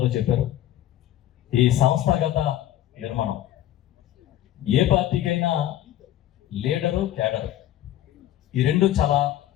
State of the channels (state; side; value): quieter; right; 12.9 dB